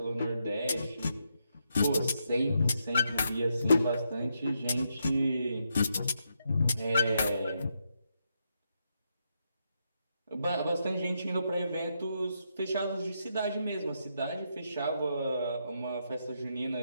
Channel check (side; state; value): both; inverted; correlation -0.81